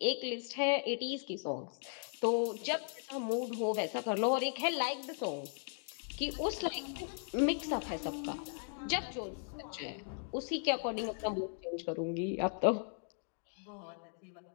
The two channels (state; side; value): silent; right; 53 dB below the other